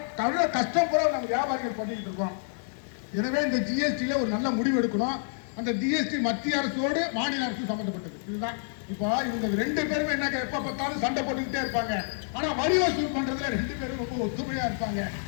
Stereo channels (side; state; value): right; silent; digital silence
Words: தவிர கஷ்டம் கூட நம்ம வியாபாரிகள் பண்ணிட்டு இருக்கோம். எனவே இந்த ஜிஎஸ்டியில் ஒரு நல்ல முடிவு எடுக்கணும். அந்த ஜிஎஸ்டி மத்திய அரசோடு மாநில அரசு சம்பந்தப்பட்டது. இதுதான் இப்போ இவங்க 2 பேருமே என்ன எப்ப பார்த்தாலும் சண்டை போட்டுக்கிட்டே இருப்பாங்க. ஆனா வரி வசூல் பண்றதுல 2 பேரும் ரொம்ப ஒத்துமையா இருப்பாங்க.